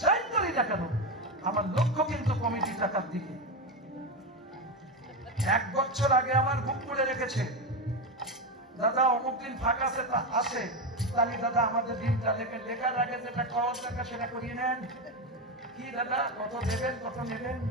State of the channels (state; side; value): normal; both; correlation 0.14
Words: যাই করি না কেন, আমার লক্ষ্য কিন্তু কমিটি টাকার দিকে। 1 বছর আগে আমার বুক করে রেখেছে, দাদা অমুক দিন ফাঁকা আছে, তাহলে দাদা আমাদের দিনটা লেখার আগে যেটা খাওয়ার দরকার সেটা করিয়ে নেন। কি দাদা কত দেবেন, কত নেবেন?